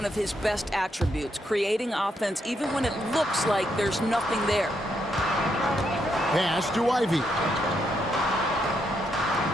of his best attributes, creating offense even when it looks like there's nothing there. Pass to Ivy.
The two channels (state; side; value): normal; both; correlation 0.78